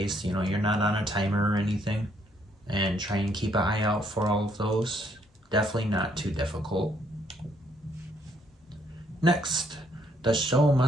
You know, you're not on a timer or anything, and try and keep an eye out for all of those. Definitely not too difficult. Next, The Show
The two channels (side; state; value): both; normal; correlation 0.69